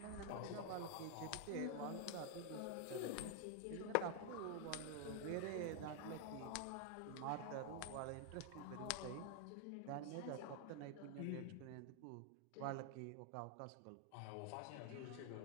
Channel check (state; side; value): different; both; correlation 0.00